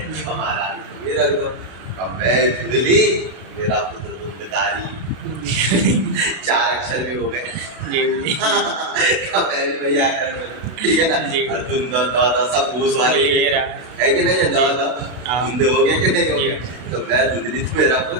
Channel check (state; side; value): late; left; 32 ms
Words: हमारा तुम ही रख दो। अब मैं धुंधली, मेरा पुत्र धुंधकारी, 4 अक्षर भी हो गए। भैया ठीक है ना। और धुंध दादा सब घूस वाले है कि नहीं है, दादा धुंध हो गया कि नहीं हो गया। तो मैं धुंधली तो मेरा